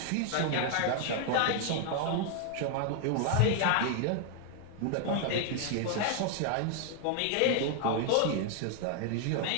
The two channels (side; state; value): both; different; correlation 0.00